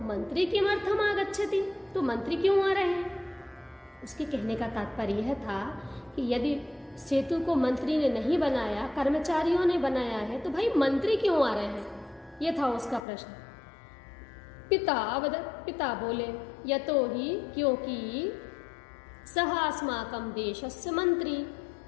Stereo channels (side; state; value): right; drops out; at 13.0 s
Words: मंत्री किमर्थम आगच्छति, तो मंत्री क्यों आ रहे हैं? उसके कहने का तात्पर्य यह था कि यदि सेतु को मंत्री ने नहीं बनाया, कर्मचारियों ने बनाया है, तो भाई मंत्री क्यों आ रहे हैं? यह था उसका प्रश्न। पिता बोले, यतो ही, क्योंकि सह अस्माकं देशस्य मंत्री,